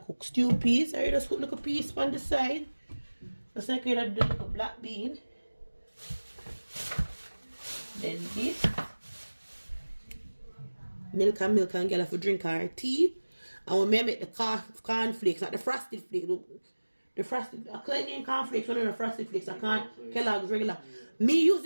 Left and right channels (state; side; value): inverted; both; correlation -1.00